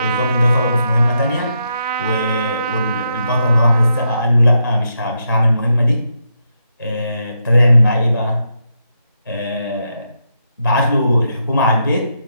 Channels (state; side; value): inverted; both; correlation -0.82